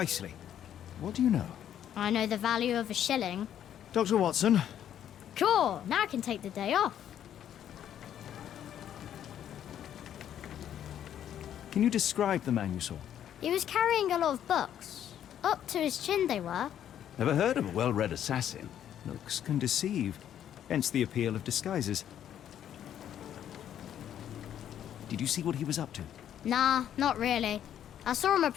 What do you know? I know the value of a shilling. Dr. Watson, Cool, now I can take the day off. can you describe the man you saw? He was carrying a lot of books. Up to his chin they were. Never heard of a well-read assassin. Looks can deceive, hence the appeal of disguises. Did you see what he was up to? Nah, not really. I saw him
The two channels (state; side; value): quieter; right; 10.3 dB